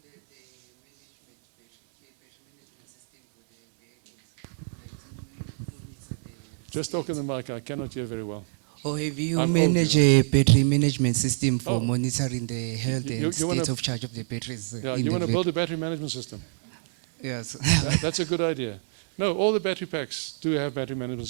a battery management system for the vehicles? Just talk in the mic, I cannot hear very well. Or have you I'm managed old, a battery management system for Oh. monitoring the health You and wanna- state of charge of the batteries? Yeah, in you the want to vehicle? build a battery management system? Yes. That's a good idea. No, all the battery packs do have battery management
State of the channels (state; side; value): silent; left; 61 dB below the other